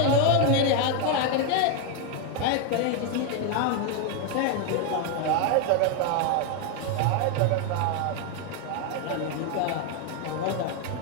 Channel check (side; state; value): both; different; correlation 0.01